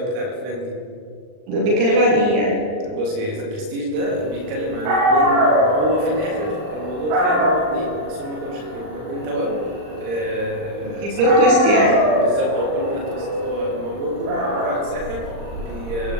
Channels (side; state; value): left; late; 39 ms